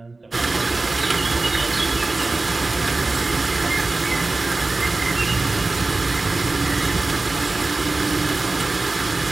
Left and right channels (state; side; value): quieter; left; 3.3 dB